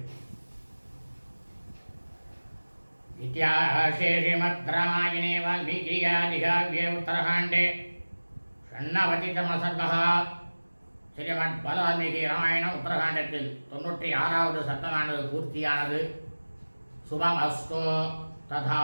इतिहासे श्रीमद्रामायणे वाल्मीकियादिकाव्ये उत्तरकाण्डे षण्णवतितमसर्गः श्रीमद्वाल्मीकि रामायण उत्तरकाण्डத்தில் 96வது சர்க்கமானது பூர்த்தியானது. சுபமஸ்து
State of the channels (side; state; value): both; inverted; correlation -1.00